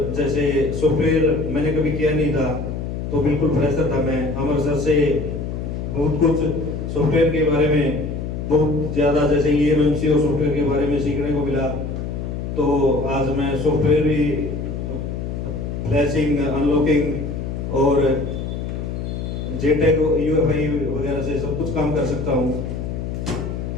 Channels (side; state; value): left; noise; hum, 5 dB below the sound